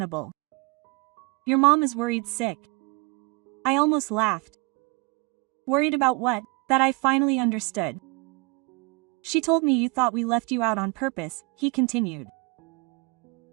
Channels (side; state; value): left; quieter; 27.2 dB